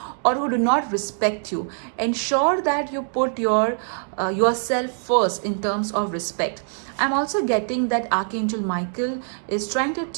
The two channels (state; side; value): silent; left; 63 dB below the other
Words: or who do not respect you. Ensure that you put yourself first in terms of respect. I'm also getting that Archangel Michael is trying to